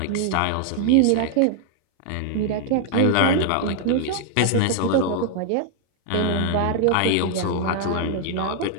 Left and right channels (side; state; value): both; different; correlation 0.00